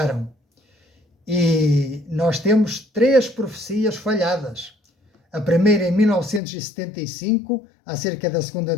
E nós temos 3 profecias falhadas. A primeira em 1975, acerca da segunda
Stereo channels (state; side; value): drops out; right; at 6.4 s